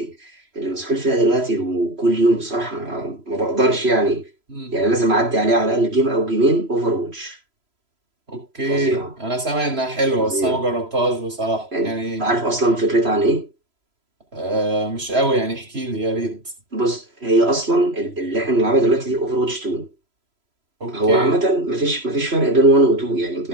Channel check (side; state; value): left; late; 3.0 ms